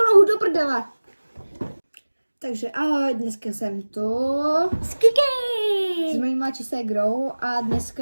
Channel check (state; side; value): inverted; both; correlation -1.00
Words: nohu do prdele. Takže ahoj, dneska jsem tu s mojí mladší ségrou a